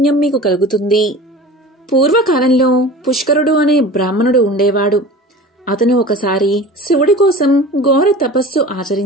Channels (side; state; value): both; normal; correlation 0.38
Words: మీకు కలుగుతుంది. పూర్వకాలంలో పుష్కరుడు అనే బ్రాహ్మణుడు ఉండేవాడు. అతను ఒకసారి శివుడి కోసం ఘోర తపస్సు